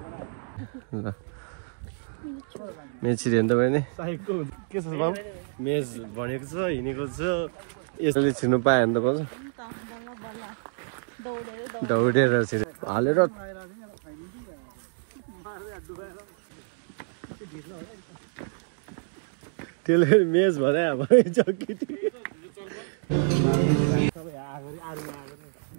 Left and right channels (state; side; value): silent; left; digital silence